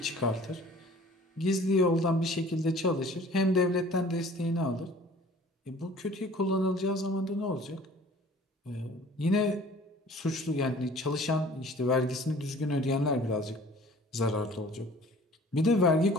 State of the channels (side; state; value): both; normal; correlation 0.49